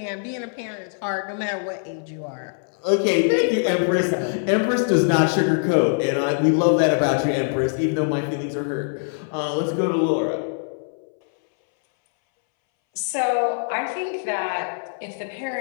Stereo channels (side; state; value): right; silent; 63 dB below the other